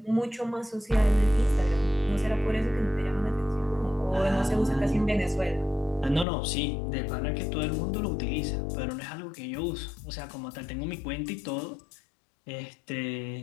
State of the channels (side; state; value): right; drops out; at 6.2 s